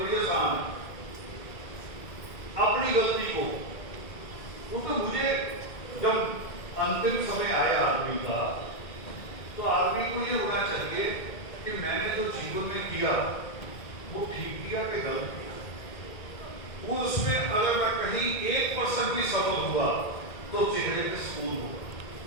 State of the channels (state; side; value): late; right; 2.0 ms